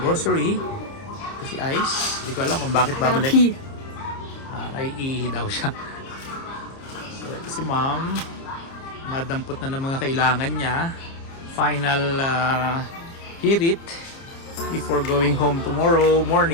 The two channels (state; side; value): late; right; 30 ms